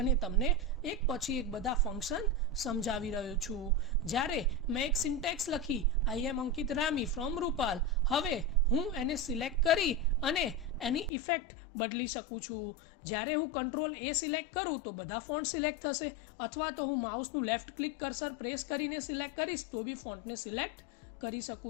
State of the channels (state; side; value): drops out; right; at 11.1 s